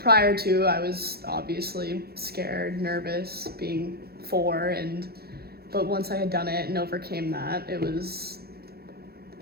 to, I was obviously scared, nervous, being 4, but once I had done it and overcame that, it was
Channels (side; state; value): left; late; 0.46 ms